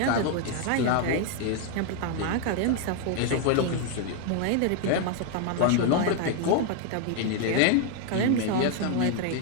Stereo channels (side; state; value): both; different; correlation 0.01